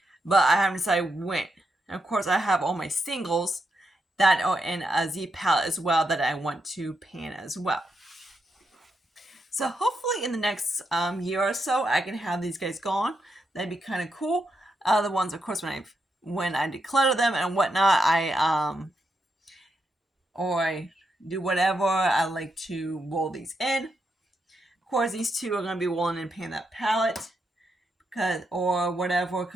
But I haven't decided when. And of course, I have all my singles that are in a Z palette as well that I want to pan as well. So hopefully in the next year or so, I can have these guys gone. That'd be kind of cool. The ones, of course, when I declutter them and whatnot, I do whatever, I like to roll these in. Of course, these 2 are going to be rolling and pan that palette.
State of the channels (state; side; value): normal; both; correlation 0.83